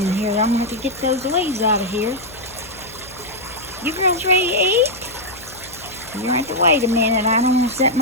here. I'm gonna have to get those leaves out of here. You girls ready to eat? You have to wait a minute. I don't want to set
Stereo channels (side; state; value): left; noise; hum, 20 dB below the sound